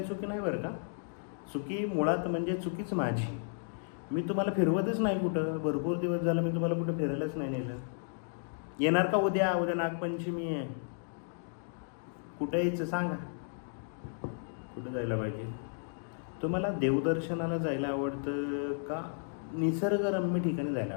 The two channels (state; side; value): silent; right; digital silence